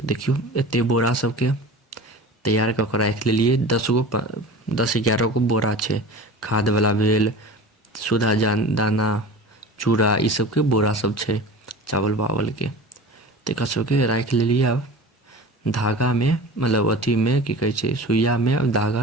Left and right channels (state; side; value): normal; both; correlation 0.36